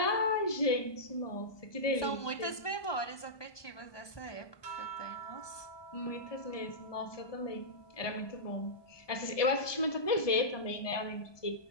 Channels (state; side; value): late; right; 1.2 ms